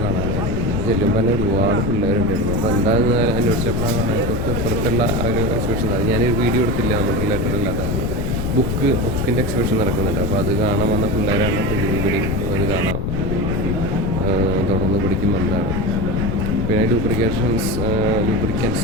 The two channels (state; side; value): noise; left; rumble, 2 dB below the sound